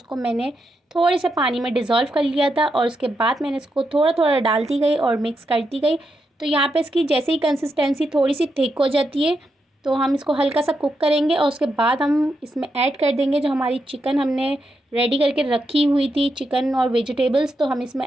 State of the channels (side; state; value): both; normal; correlation 0.84